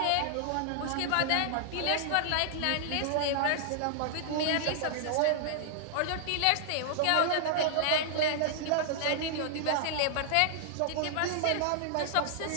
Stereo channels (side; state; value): both; different; correlation -0.01